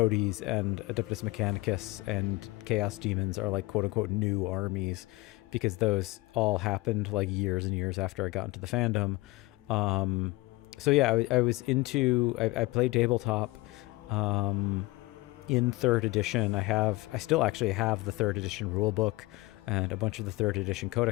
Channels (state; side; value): quieter; right; 21.3 dB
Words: and Adeptus Mechanicus and Chaos Demons are like quote unquote new armies, because those all happened like years and years after I got into the fandom. So yeah, I was into, I played tabletop in 3rd edition. I still actually have the 3rd edition rulebook and a bunch of the 3rd edition